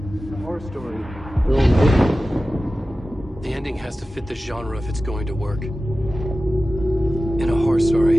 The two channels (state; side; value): normal; both; correlation 0.95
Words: A horror story. The ending has to fit the genre if it's going to work. In a horror